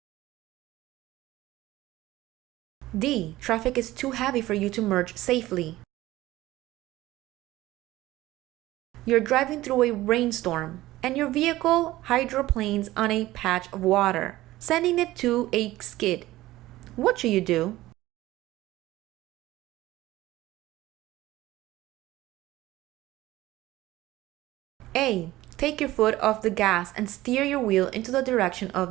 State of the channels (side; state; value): left; quieter; 16.7 dB